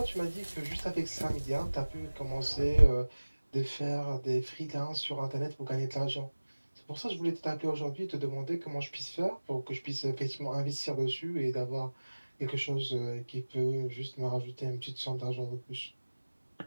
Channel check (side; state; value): both; inverted; correlation -1.00